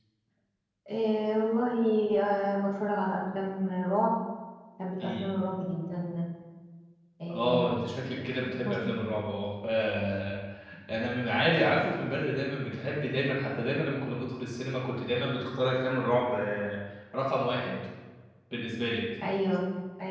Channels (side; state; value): both; identical; correlation 1.00